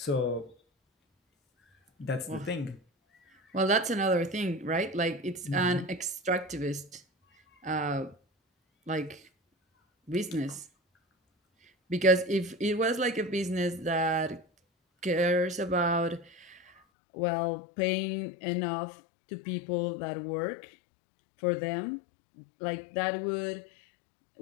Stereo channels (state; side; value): drops out; right; at 16.8 s